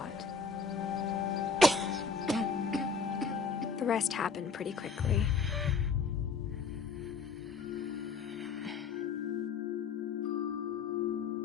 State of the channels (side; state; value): right; quieter; 5.1 dB